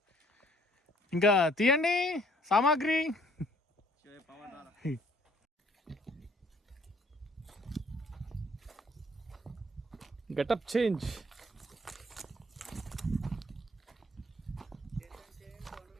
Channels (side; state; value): both; normal; correlation 0.61